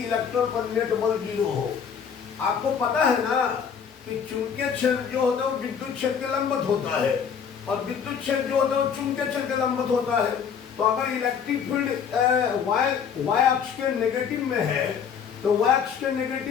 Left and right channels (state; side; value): quieter; right; 7.2 dB